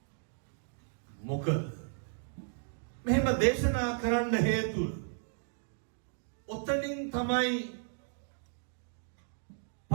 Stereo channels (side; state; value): left; silent; digital silence